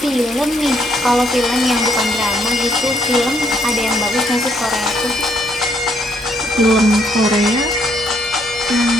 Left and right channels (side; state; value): both; normal; correlation 0.70